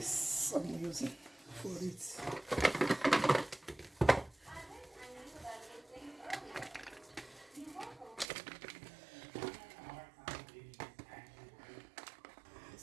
I'm using for it. So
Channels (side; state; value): left; drops out; at 8.2 s